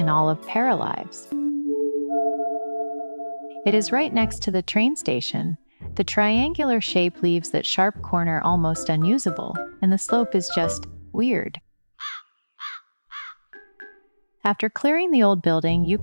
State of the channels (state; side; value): inverted; both; correlation -1.00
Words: all of Paralives. It is right next to the train station. The triangular shape leaves that sharp corner almost unusable, and the slope is just weird. After clearing the old building, you